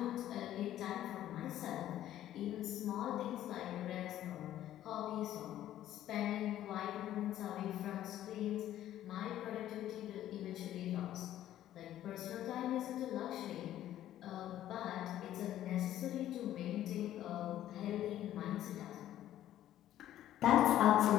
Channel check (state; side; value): quieter; right; 12.6 dB